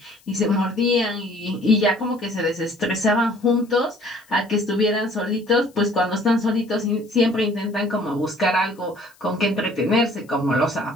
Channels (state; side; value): noise; left; hiss, 30 dB below the sound